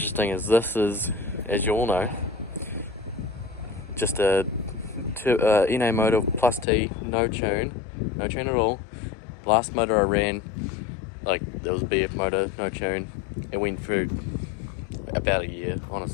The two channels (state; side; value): drops out; right; at 6.7 s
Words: is this is, as you all know, just a NA motor plus T, no tune at all. Last motor I ran, like, there was a BF motor, no tune. It went through about a year,